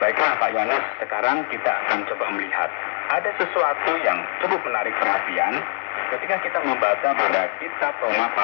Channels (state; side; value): silent; right; 56 dB below the other